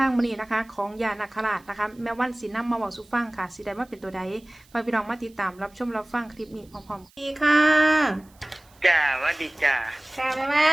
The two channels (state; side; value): noise; right; hiss, 30 dB below the sound